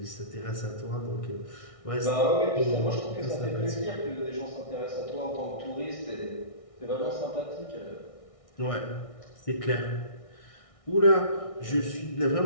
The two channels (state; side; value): late; right; 1.6 ms